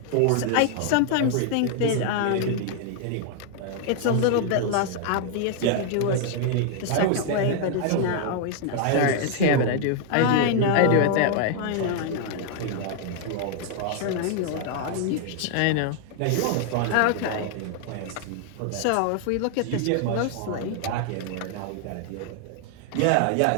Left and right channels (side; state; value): both; different; correlation 0.00